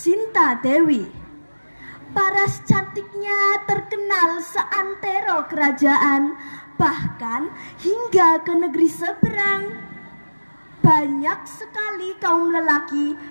Dewi. Paras cantiknya terkenal seantero kerajaan, bahkan hingga ke negeri seberang. Banyak sekali kaum lelaki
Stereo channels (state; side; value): inverted; both; correlation -1.00